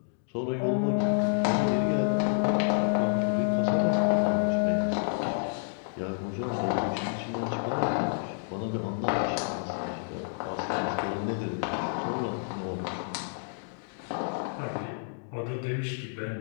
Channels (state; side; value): silent; right; digital silence